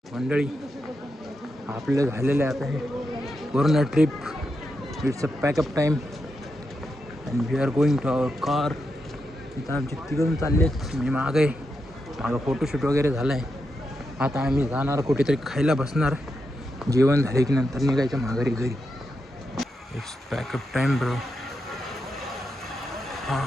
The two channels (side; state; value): both; normal; correlation 0.86